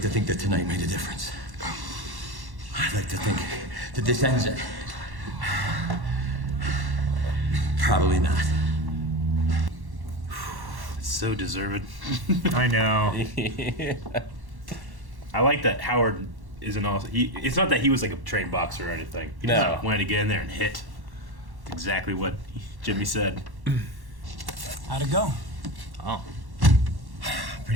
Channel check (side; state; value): left; late; 1.1 ms